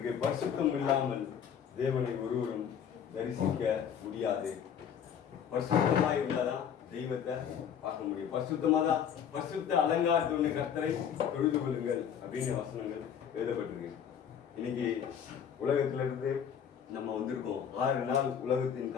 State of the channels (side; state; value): right; quieter; 8.3 dB